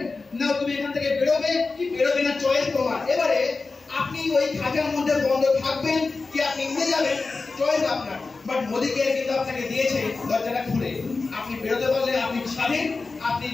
না তুমি এখান থেকে বেরোবে কি বেরোবে না, চয়েস তোমার। এবারে আপনি ওই খাঁচার মধ্যে বন্ধ থাকবেন কি আপনি উড়ে যাবেন, চয়েস আপনার। বাট মোদি কেয়ার কিন্তু আপনাকে দিয়েছে দরজাটা খুলে। আপনি বেরোতে পারলে আপনি স্বাধীন, আপনি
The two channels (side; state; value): right; quieter; 3.9 dB